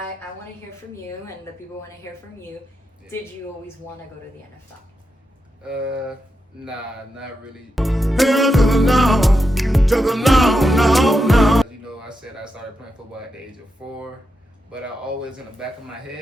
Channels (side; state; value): both; normal; correlation 0.87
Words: want to hear from you, and the people want to hear from you. Yeah. Did you always want to go to the NFL? Nah, not really. Hell to the no, no. You know, I said I started playing football at the age of 4, but I always in the back of my